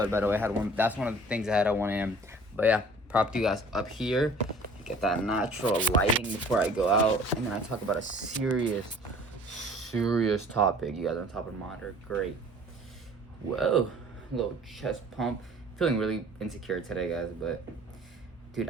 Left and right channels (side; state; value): both; normal; correlation 0.50